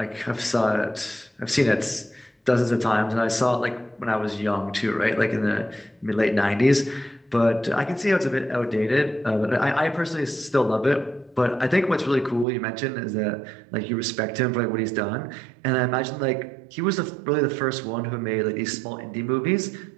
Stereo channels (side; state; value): left; drops out; at 12.5 s